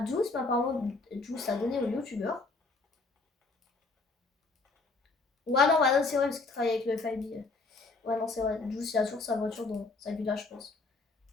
Juice, mais apparemment, Juice l'a donné au youtubeur. Ouais, non, bah, non c'est vrai, parce qu'il travaille avec le FIB. Ouais, non, c'est vrai. Juice, il a toujours sa voiture dans sa villa, je pense.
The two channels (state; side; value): quieter; right; 3.7 dB